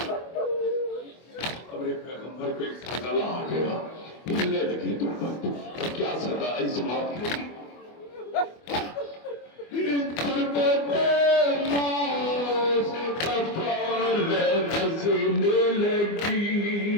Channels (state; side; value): late; right; 24 ms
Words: अब एक पैगंबर पे सदा आ गया, हिलने लगी गुरबत। क्या सदा इस बात की गुरबत मौत का फल नज़र लगी,